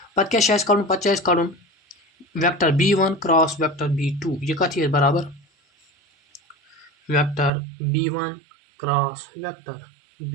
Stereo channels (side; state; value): left; drops out; at 7.5 s